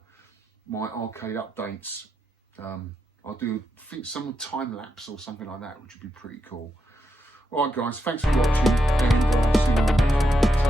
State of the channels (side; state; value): both; normal; correlation 0.84